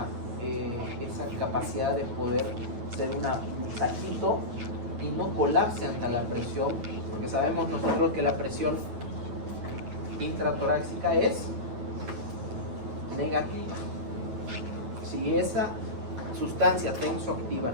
capacidad de poder ser un saquito y no colapse ante la presión, porque sabemos nosotros que la presión intratorácica es negativa. Si esa sustancia tensoactiva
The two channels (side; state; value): left; late; 9.1 ms